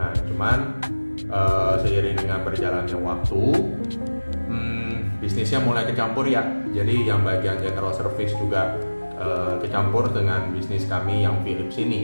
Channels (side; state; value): both; inverted; correlation -1.00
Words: cuman seiring dengan berjalannya waktu, bisnisnya mulai kecampur ya. Jadi yang bagian general service juga kecampur dengan bisnis kami yang Philips